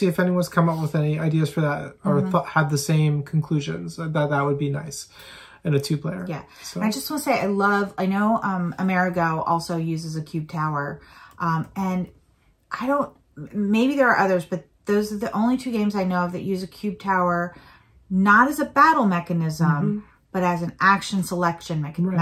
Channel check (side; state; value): both; identical; correlation 1.00